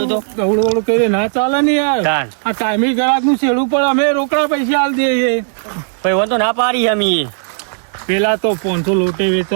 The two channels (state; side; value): silent; left; digital silence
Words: તો ગવડું કરી ના ચાલે ને યાર. તાન. આ ટાઈમી ગ્રાહક નું છેડું પણ અમે રોકડા પૈસા આલ દઈએ ભાઈ વાંધો ના પાડી અમે પેલા તો 500 લોટે